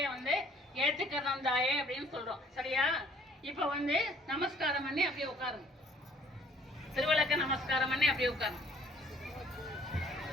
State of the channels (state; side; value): normal; both; correlation 0.58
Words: வந்து ஏற்றுக்கிறோம் தாயே அப்படின்னு சொல்றோம். சரியா? இப்ப வந்து நமஸ்காரம் பண்ணி அப்படியே உட்காருங்க. திருவிளக்க நமஸ்காரம் பண்ணி அப்படியே உட்காருங்க.